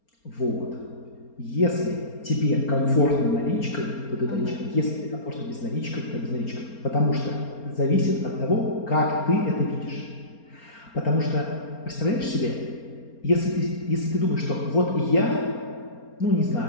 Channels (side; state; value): right; late; 4.3 ms